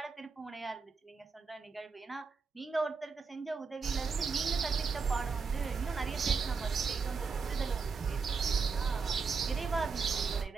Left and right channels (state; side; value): quieter; left; 5.0 dB